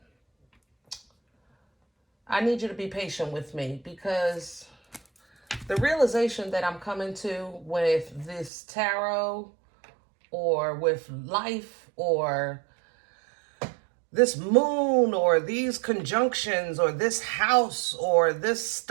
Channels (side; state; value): left; drops out; at 8.5 s